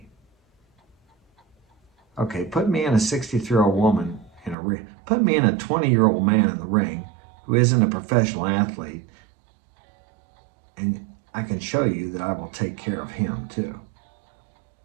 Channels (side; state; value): left; drops out; at 4.5 s